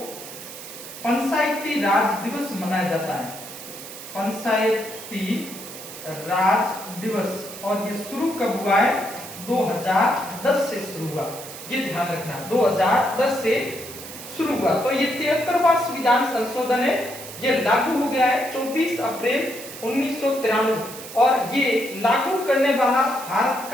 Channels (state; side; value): noise; right; hiss, 13 dB below the sound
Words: पंचायती राज दिवस मनाया जाता है। पंचायती राज दिवस, और ये शुरू कब हुआ है, 2010 से शुरू हुआ, ये ध्यान रखना, 2010 से शुरू हुआ। तो ये 73वां संविधान संशोधन है, ये लागू हो गया है 24 अप्रैल 1993 और ये लागू करने वाला भारत